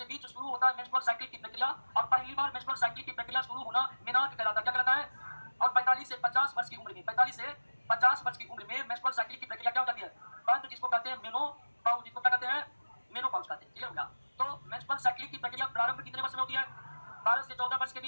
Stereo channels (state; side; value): inverted; both; correlation -1.00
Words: बीच शुरू होता है मेंस्ट्रुअल साइकिल की प्रक्रिया। और पहली बार मेंस्ट्रुअल साइकिल की प्रक्रिया शुरू होना मेनार्क कहलाता है। क्या कहलाता है? और 45 से 50 वर्ष की उम्र में, 45 से 50 वर्ष की उम्र में मेंस्ट्रुअल साइकिल की प्रक्रिया क्या हो जाती है? बंद, जिसको कहते हैं मेनोपॉज। जिसको क्या कहते हैं? मेनोपॉज कहते हैं। क्लियर हो गया? तो मेंस्ट्रुअल साइकिल की प्रक्रिया प्रारंभ कितने वर्ष में होती है? 12 से 14 वर्ष के